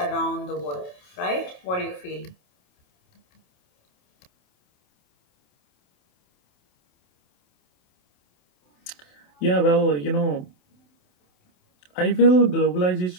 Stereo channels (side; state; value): right; late; 27 ms